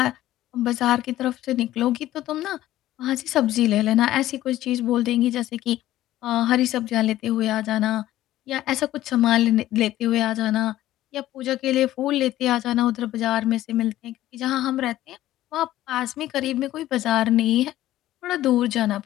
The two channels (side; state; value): right; quieter; 14.4 dB